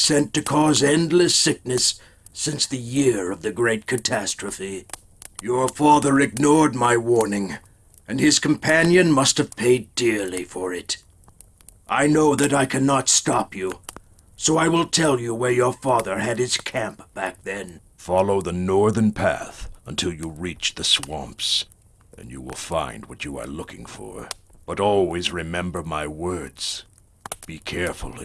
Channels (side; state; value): both; identical; correlation 1.00